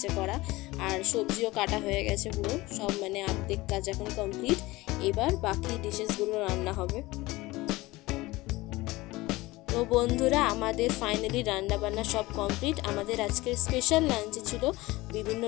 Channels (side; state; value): right; quieter; 20.1 dB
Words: করা, আর সবজিও কাটা হয়ে গেছে পুরো সব, মানে অর্ধেক কাজ এখন কমপ্লিট। এবার বাকি ডিশেসগুলো রান্না হবে। তো বন্ধুরা, আমাদের ফাইনালি রান্না বান্না সব কমপ্লিট। আমাদের আজকের স্পেশাল লাঞ্চে ছিল বিভিন্ন